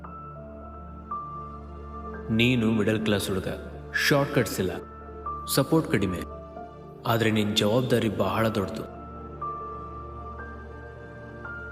ನೀನು ಮಿಡಲ್ ಕ್ಲಾಸ್ ಹುಡುಗ, ಶಾರ್ಟ್ ಕಟ್ಸ್ ಇಲ್ಲ, ಸಪೋರ್ಟ್ ಕಡಿಮೆ, ಆದರೆ ನಿನ್ನ ಜವಾಬ್ದಾರಿ ಬಹಳ ದೊಡ್ಡದು.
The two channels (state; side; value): identical; both; correlation 1.00